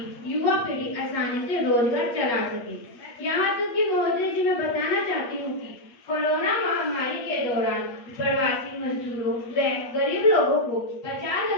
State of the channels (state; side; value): late; right; 8.5 ms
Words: युवा पीढ़ी आसानी से रोजगार चला सके। यहाँ तक कि महोदय जी मैं बताना चाहती हूँ कि कोरोना महामारी के दौरान प्रवासी मजदूरों व गरीब लोगों को